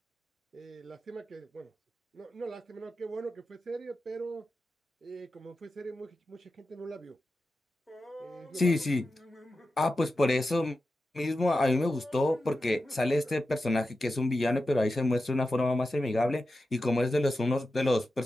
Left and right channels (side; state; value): both; normal; correlation 0.92